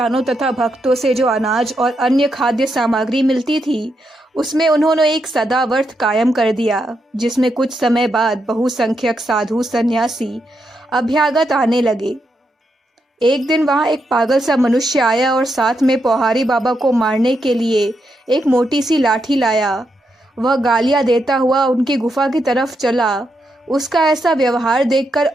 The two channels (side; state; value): both; normal; correlation 0.82